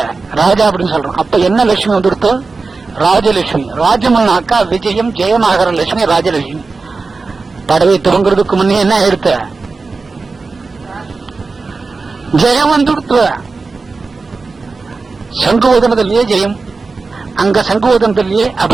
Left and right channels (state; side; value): quieter; left; 4.0 dB